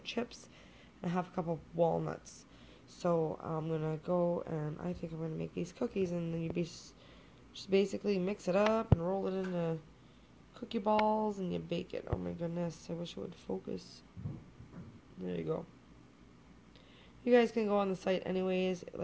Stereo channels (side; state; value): both; identical; correlation 1.00